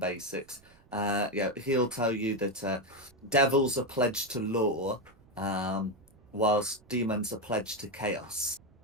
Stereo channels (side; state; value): right; noise; rumble, 28 dB below the sound